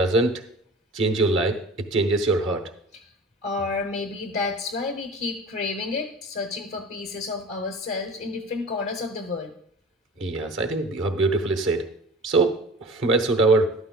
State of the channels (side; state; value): both; normal; correlation 0.41